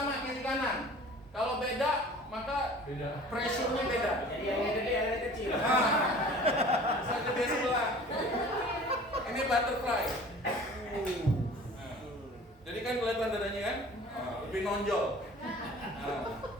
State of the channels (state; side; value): normal; both; correlation 0.45